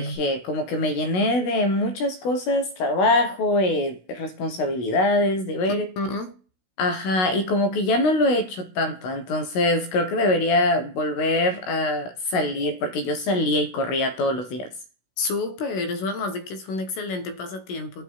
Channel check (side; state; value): right; late; 16 ms